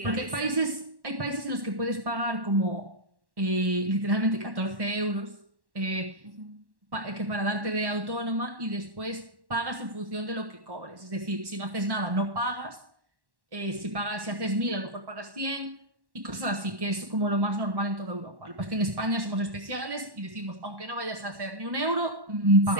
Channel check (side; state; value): left; late; 1.1 ms